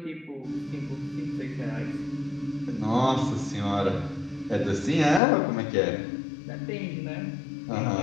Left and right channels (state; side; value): drops out; right; at 5.2 s